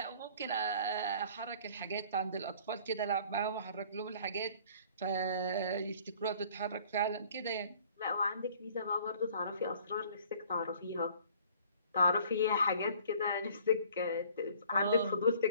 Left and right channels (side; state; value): both; inverted; correlation -0.53